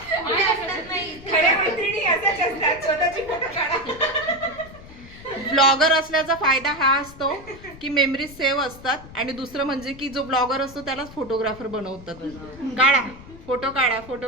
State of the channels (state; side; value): noise; left; rumble, 18 dB below the sound